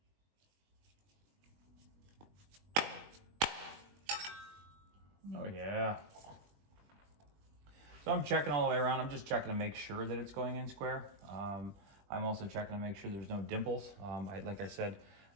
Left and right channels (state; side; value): late; left; 20 ms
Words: Oh yeah. So I'm checking all the way around. I'm just checking to make sure that it's going in square. I'm also checking to make sure there's no dimples. Like I said,